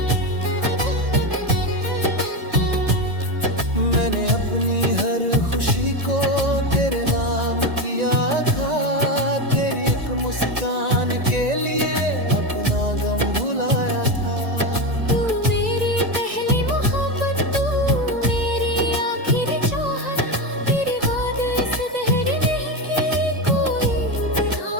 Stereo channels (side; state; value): left; late; 1.9 ms